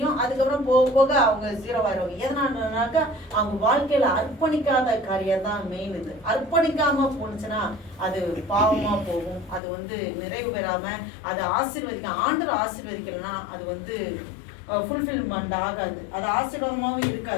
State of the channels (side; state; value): right; drops out; at 9.6 s